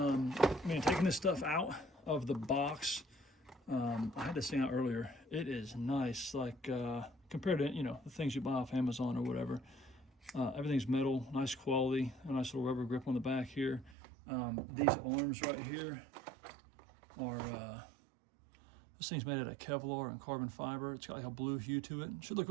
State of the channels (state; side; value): drops out; left; at 14.0 s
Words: this stuff out of the box, I had this thing out earlier. It is nice, like compared to the things you buy off Amazon or whatever. Everything's metal, nice quality, a nice little rubber grip on the back here. These arms right here are this thing's made out of Kevlar and carbon fiber. It's got like a blue hue to it. It should look